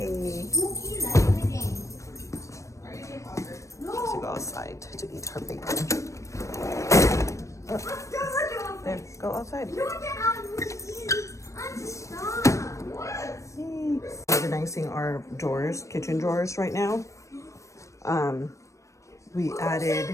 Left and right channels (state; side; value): late; right; 0.15 ms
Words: To go outside to eat her bacon. There, go outside. Organizing our drawers, kitchen drawers right now. We